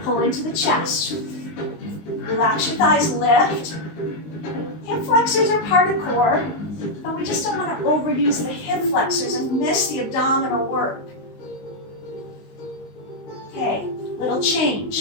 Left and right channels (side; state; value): right; late; 19 ms